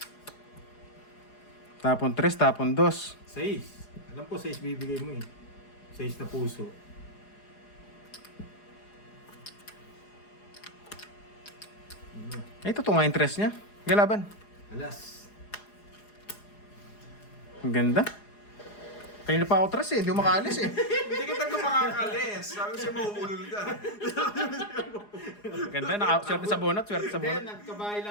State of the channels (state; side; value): late; right; 4.8 ms